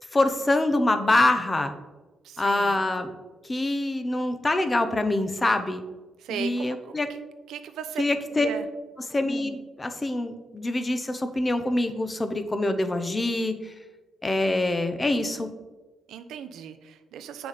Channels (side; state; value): both; normal; correlation 0.92